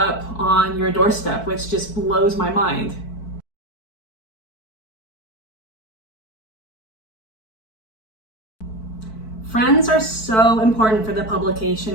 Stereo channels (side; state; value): right; late; 4.6 ms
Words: on your doorstep, which just blows my mind. Friends are so important for the